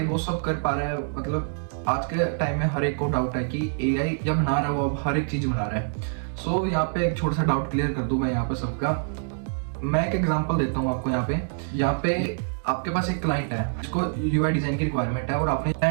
वो सब कर पा रहा है। मतलब आज के टाइम में हर एक को डाउट है कि एआई जब बना रहा है वो अब हर एक चीज़ बना रहा है। सो यहाँ पे एक छोटा सा डाउट क्लियर कर दूँ मैं यहाँ पे सबका। मैं एक एग्जांपल देता हूँ आपको। यहाँ पे आपके पास एक क्लाइंट है जिसको यूआई डिज़ाइन की रिक्वायरमेंट है और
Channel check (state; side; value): silent; left; digital silence